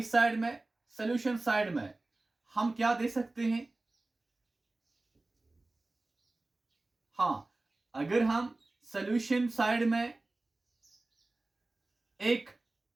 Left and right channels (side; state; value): left; quieter; 3.0 dB